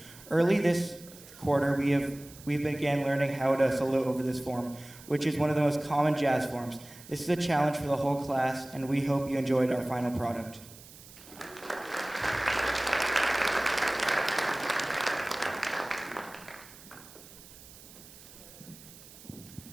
Early this quarter, we began learning how to solo over this form, which is one of the most common jazz forms. This is a challenge for the whole class, and we hope you enjoyed our final product.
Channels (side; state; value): right; noise; hiss, 19 dB below the sound